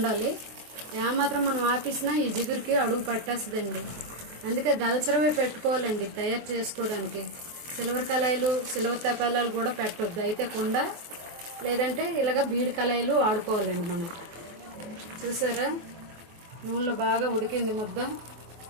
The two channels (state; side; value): late; left; 24 ms